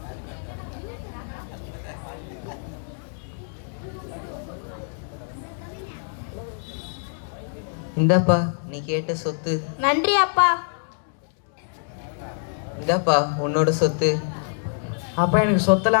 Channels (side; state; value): right; silent; 62 dB below the other